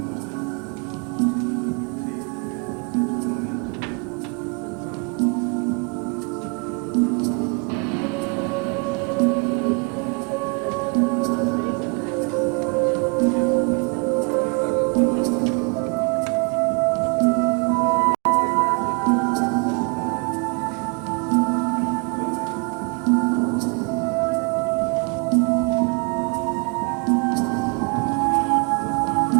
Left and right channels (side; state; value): left; quieter; 33.7 dB